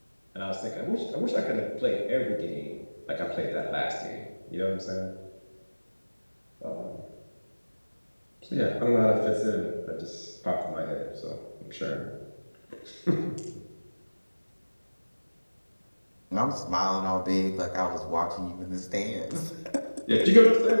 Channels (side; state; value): both; inverted; correlation -1.00